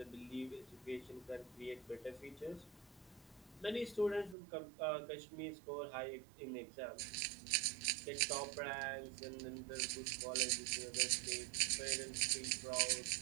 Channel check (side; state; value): left; drops out; at 4.4 s